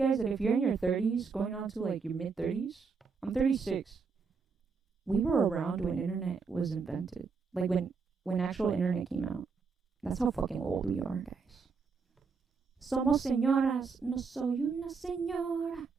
That if you're in your 30s, going on to like your mid 30s, I'm 36. We were around when internet was invented. Like when actual internet came out. That's how fucking old we are, guys. Somos señoras, no soy una señora.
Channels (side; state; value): left; quieter; 5.1 dB